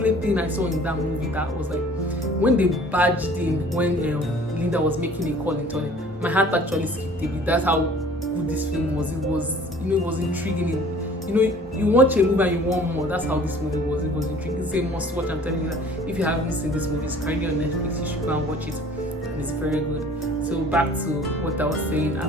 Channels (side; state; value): both; normal; correlation 0.50